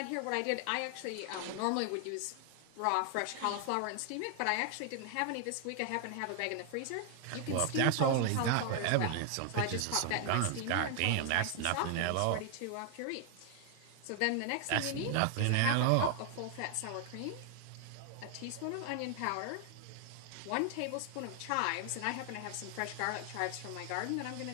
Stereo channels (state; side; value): different; both; correlation 0.00